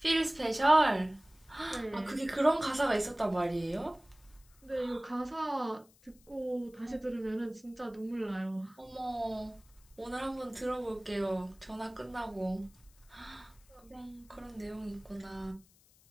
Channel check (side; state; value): left; noise; hiss, 29 dB below the sound